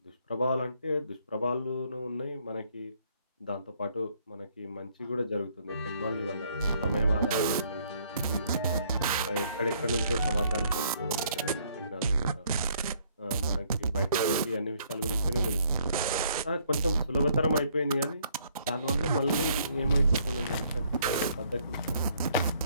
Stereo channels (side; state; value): both; inverted; correlation -0.66